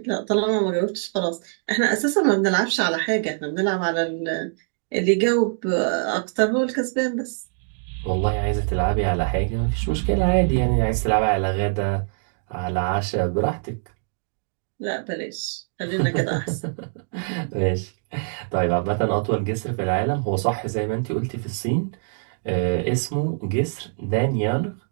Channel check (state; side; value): silent; left; digital silence